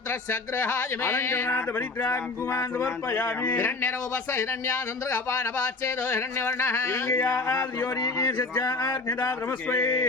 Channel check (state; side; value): quieter; right; 3.5 dB